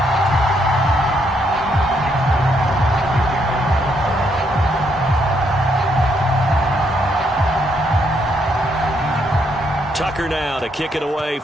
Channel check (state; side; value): normal; both; correlation 0.74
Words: Tucker now to kick it away